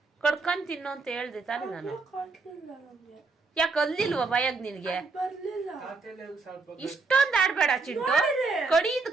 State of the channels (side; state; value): left; quieter; 4.1 dB